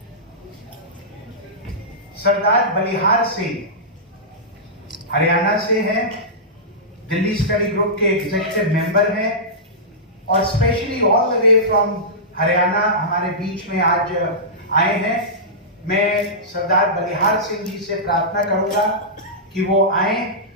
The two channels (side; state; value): both; normal; correlation -0.15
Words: सरदार बलिहार सिंह हरियाणा से हैं, दिल्ली स्टडी ग्रुप के एग्जीक्यूटिव मेंबर हैं और specially all the way from Haryana हमारे बीच में आज आए हैं। मैं सरदार बलिहार सिंह जी से प्रार्थना करूंगा कि वो आए